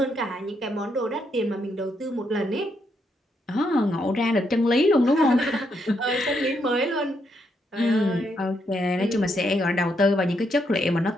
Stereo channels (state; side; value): normal; both; correlation 0.78